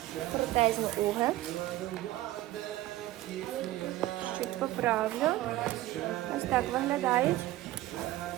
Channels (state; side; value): quieter; left; 16.0 dB